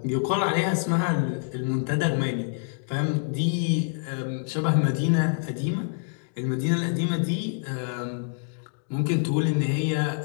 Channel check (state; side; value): silent; right; digital silence